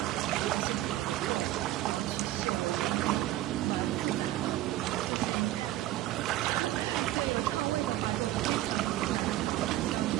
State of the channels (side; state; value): left; quieter; 15.0 dB